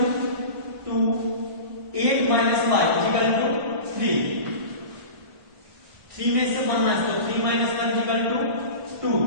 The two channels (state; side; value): late; left; 1.6 ms